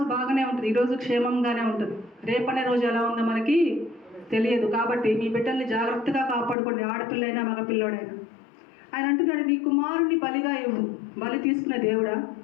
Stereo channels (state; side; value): drops out; right; at 6.6 s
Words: బాగానే ఉంటుంది, ఈరోజు క్షేమంగానే ఉంటుంది. రేపనే రోజు ఎలా ఉందో మనకి తెలియదు. కాబట్టి మీ బిడ్డల్ని జాగ్రత్తగా కాపాడుకోండి, ఆడపిల్లైనా మగపిల్లోడైనా. ఆయన అంటున్నాడు నీ కుమారుని బలిగా ఇవ్వు. బలి తీసుకునే దేవుడా